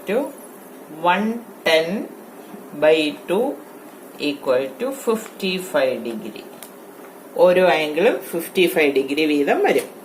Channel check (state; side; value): identical; both; correlation 1.00